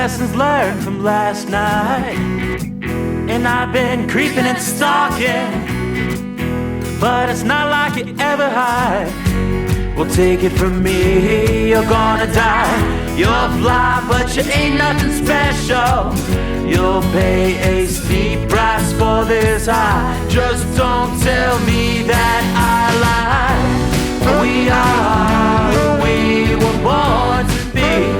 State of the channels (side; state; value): both; identical; correlation 1.00